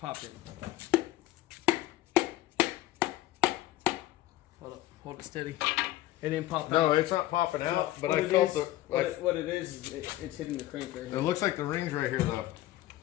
in. Hold it steady. It didn't pop out. No, it's not popping out, but What I it felt is- the. What it is it's hitting the crank right It here. looks like the ring's right here, though.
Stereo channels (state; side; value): quieter; right; 15.4 dB